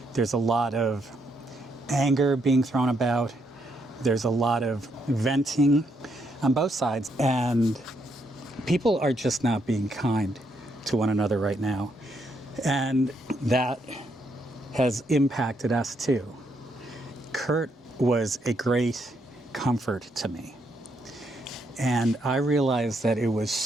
There's a lot of anger being thrown about. There's a lot of venting on both sides. And people are just not being kind to one another right now. And that has impacted us too. Kurt was a great comfort to me. And I realized that it was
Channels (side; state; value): both; normal; correlation 0.76